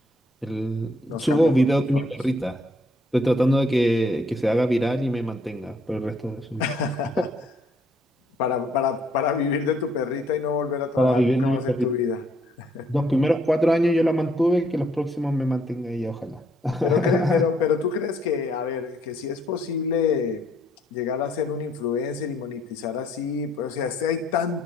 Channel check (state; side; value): normal; both; correlation 0.68